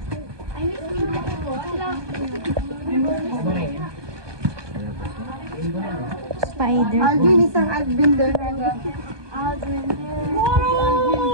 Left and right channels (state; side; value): late; left; 1.2 ms